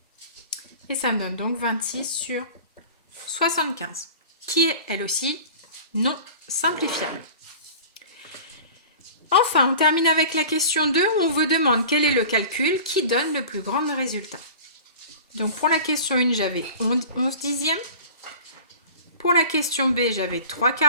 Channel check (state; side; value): inverted; both; correlation -0.39